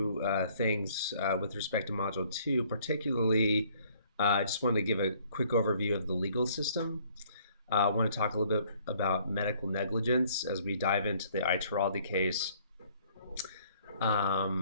things with respect to Module Two. Particularly, I just wanted to give a quick overview of the legal system. I want to talk a little bit about medical negligence as we dive into the Ituraldi case. I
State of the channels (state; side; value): inverted; both; correlation -0.60